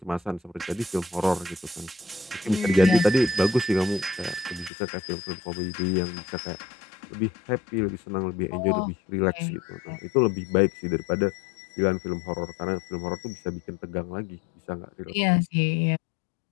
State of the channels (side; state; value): right; drops out; at 4.7 s